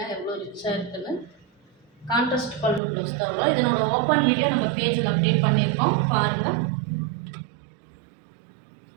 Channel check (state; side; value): drops out; left; at 2.8 s